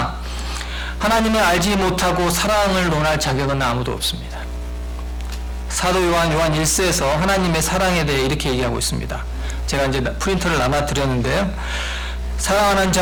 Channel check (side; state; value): both; identical; correlation 1.00